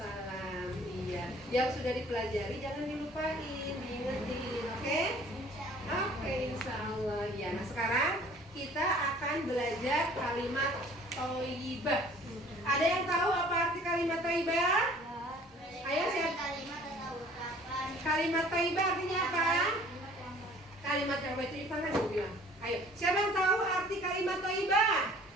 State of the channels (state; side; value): normal; both; correlation 0.52